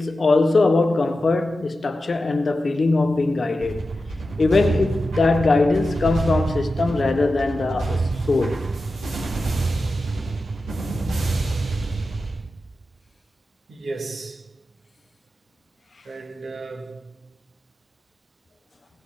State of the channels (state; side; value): normal; both; correlation 0.92